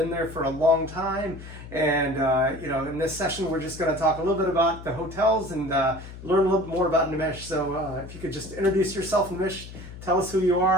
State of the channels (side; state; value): left; noise; hum, 14 dB below the sound